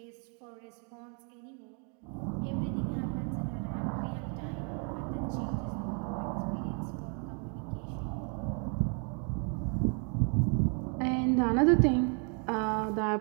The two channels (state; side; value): quieter; left; 39.1 dB